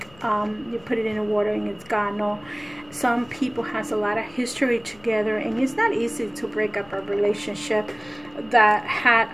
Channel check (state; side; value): noise; left; rumble, 26 dB below the sound